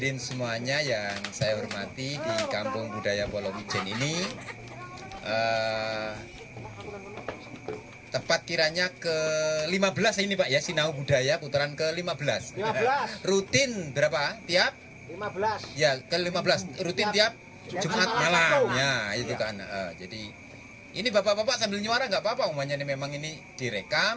semuanya yang saya hormati di Kampung Budaya Polowijen ini. Tepat kiranya ke-15 ini Pak ya, Sinau Budaya putaran ke-15. 15. Rutin berapa? Tiap? 15. Ya, ke-15. Rutin tiap Jumat malam. Ya, itu kan. Jadi ini bapak-bapak sambil nyuara nggak apa-apa, umumnya ini memang ini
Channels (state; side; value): identical; both; correlation 1.00